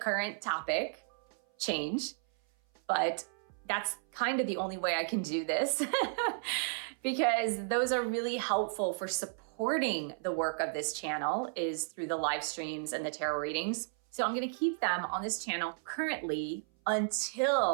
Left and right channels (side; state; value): left; silent; 55 dB below the other